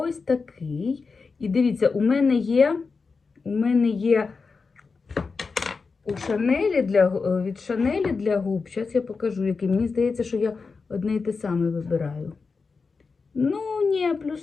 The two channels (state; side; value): quieter; right; 4.6 dB